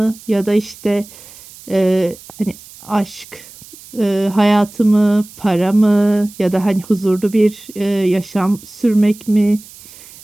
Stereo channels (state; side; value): noise; right; hiss, 20 dB below the sound